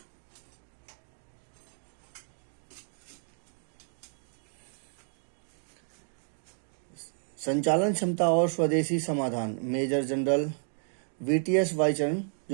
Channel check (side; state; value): left; silent; 55 dB below the other